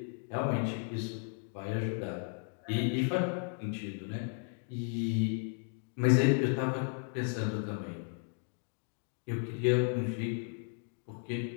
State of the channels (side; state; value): right; silent; 55 dB below the other